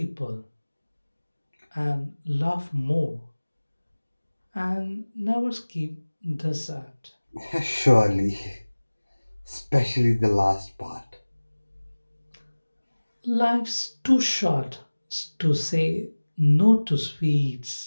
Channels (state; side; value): inverted; both; correlation -1.00